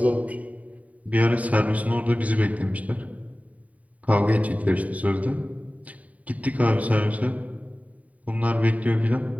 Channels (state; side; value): late; left; 0.070 ms